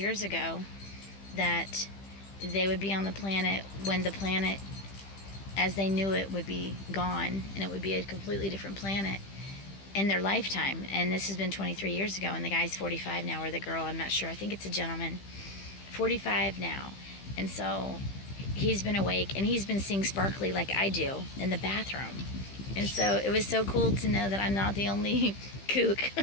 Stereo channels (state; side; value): late; right; 15 ms